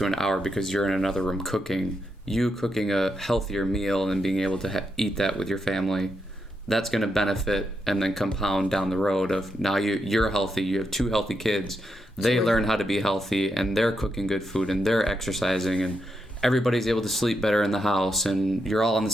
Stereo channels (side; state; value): both; normal; correlation 0.83